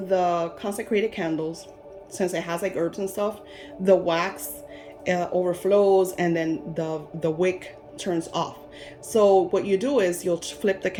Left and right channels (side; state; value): both; identical; correlation 1.00